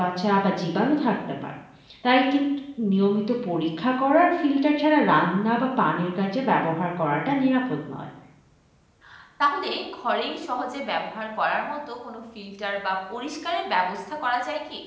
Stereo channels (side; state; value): both; identical; correlation 1.00